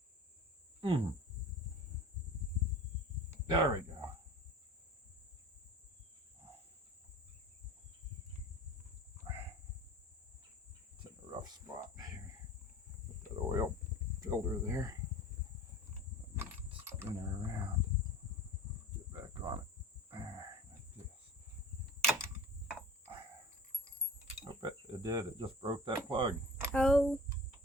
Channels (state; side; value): normal; both; correlation 0.41